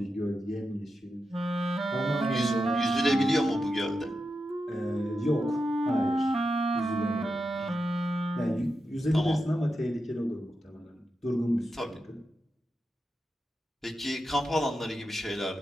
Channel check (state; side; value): normal; both; correlation 0.88